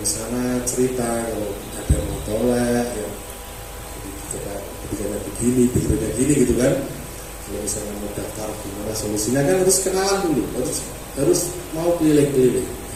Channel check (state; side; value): identical; both; correlation 1.00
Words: sana, cerita kalau ada matolak yang kebijakannya begini, pikirannya gini gitu kan. Kalau misalnya mau daftar gimana solusinya kan harus kenalan dulu, harus mau keliling-keliling.